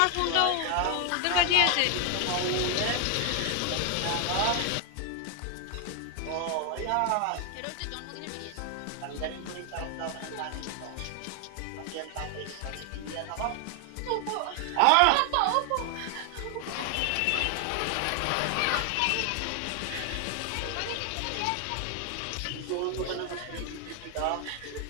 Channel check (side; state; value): both; different; correlation 0.00